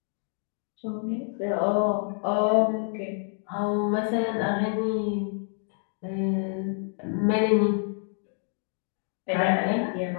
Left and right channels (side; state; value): right; silent; 56 dB below the other